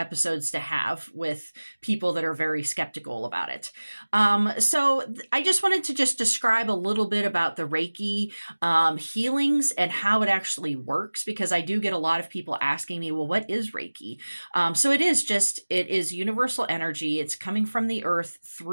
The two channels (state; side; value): inverted; both; correlation -1.00